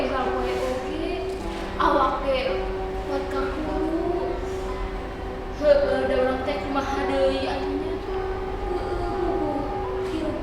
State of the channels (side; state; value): both; identical; correlation 1.00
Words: urang poe oge. Awak ge buat kakuru. Heueuh da urang teh kumaha deui atunya? Heueuh, hirup